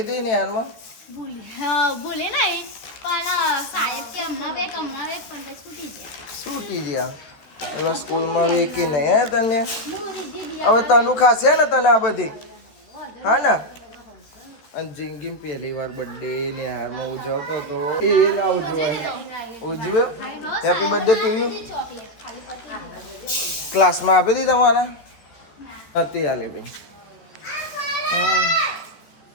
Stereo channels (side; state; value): right; late; 13 ms